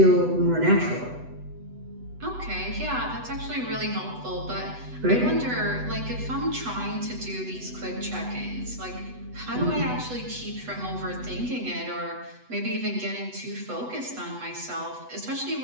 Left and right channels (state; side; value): late; left; 8.0 ms